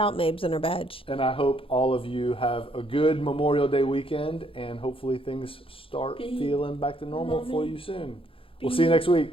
Mabes and her badge. And I hope all of you have a good Memorial Day weekend, and hopefully things start feeling back to normal for you soon. We'll see you next week.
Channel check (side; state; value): right; late; 0.26 ms